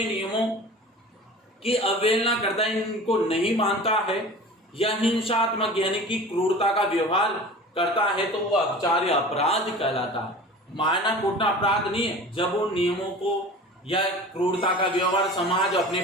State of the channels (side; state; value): both; normal; correlation 0.39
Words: नियमों की अवहेलना करता है, इनको नहीं मानता है या हिंसात्मक यानी कि क्रूरता का व्यवहार करता है, तो वो अपचार या अपराध कहलाता है। मारना कूटना अपराध नहीं है। जब वो नियमों को या क्रूरता का व्यवहार समाज अपने